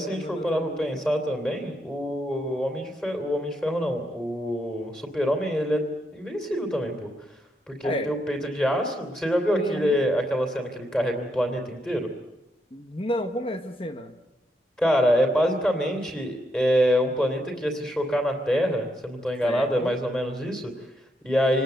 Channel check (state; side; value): normal; both; correlation 0.78